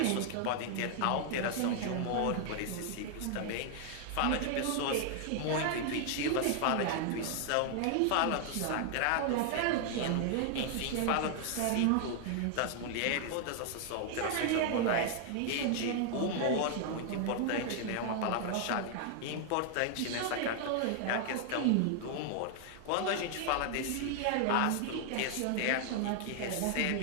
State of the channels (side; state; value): both; different; correlation 0.00